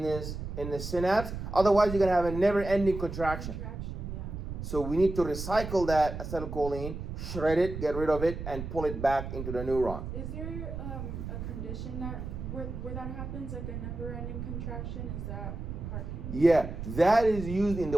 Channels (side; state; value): right; noise; rumble, 7 dB below the sound